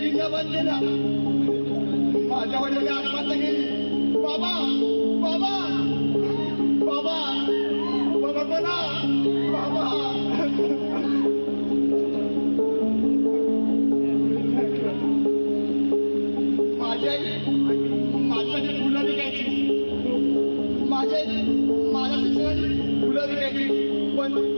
बंद केल्या. माझ्या वडिलांनी आत्महत्या केली. बाबा बाबा बाबा बाबा कोणा बाबा. माझी आई माझ्यासाठी फुलं विकायची. माझ्या शिक्षणाची फुलं विकायची.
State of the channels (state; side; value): inverted; both; correlation -1.00